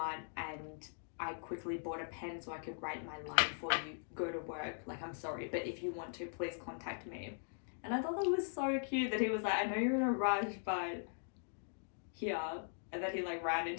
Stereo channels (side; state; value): right; silent; digital silence